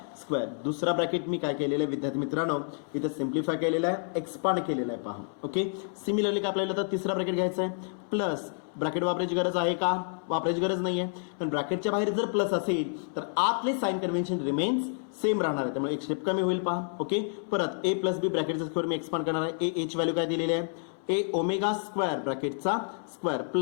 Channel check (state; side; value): silent; right; 58 dB below the other